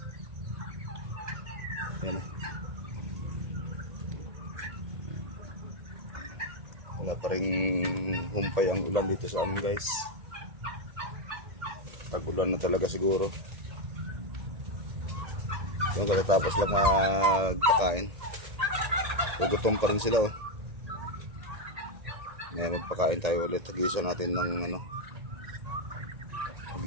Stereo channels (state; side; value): late; left; 1.8 ms